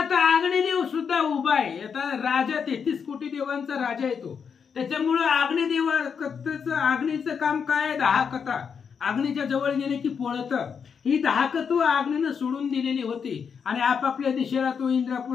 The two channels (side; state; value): right; quieter; 6.6 dB